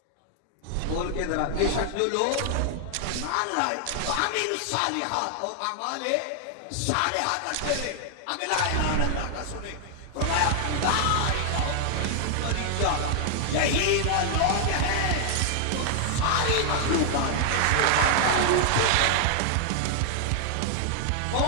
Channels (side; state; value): both; different; correlation 0.00